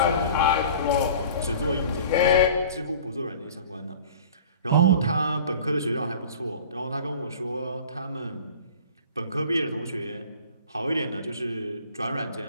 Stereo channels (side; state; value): both; inverted; correlation -0.43